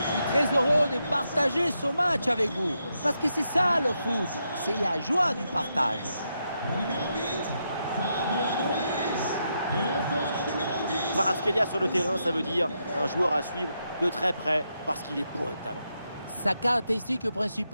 très heureux de partager ce match avec vous. Parce que c'est ça le foot, c'est la joie du partage. Kvaratskhelia sur le terrain, ça veut dire un joueur à suivre de très près parce qu'il est bourré de talent. Sa caractéristique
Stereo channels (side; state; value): both; inverted; correlation -0.82